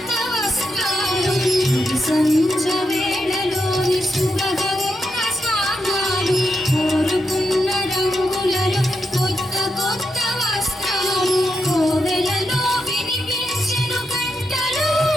వస్త్రాలు సంజ వేళలోన శుభగంగ స్నానాలు కోరుకున్న రంగులలో కొత్త కొత్త వస్త్రాలు కోవెలలో వినిపించెను గంటలు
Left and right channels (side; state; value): both; normal; correlation 0.84